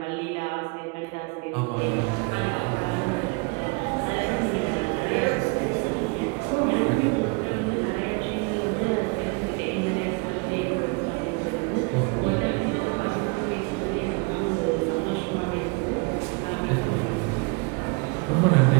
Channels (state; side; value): quieter; left; 30.5 dB